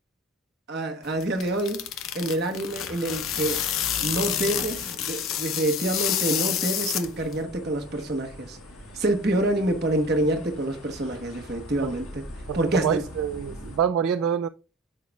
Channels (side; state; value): both; normal; correlation 0.38